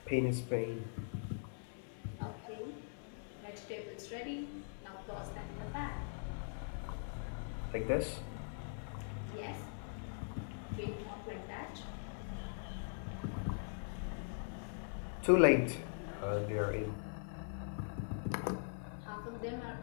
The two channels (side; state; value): right; silent; 50 dB below the other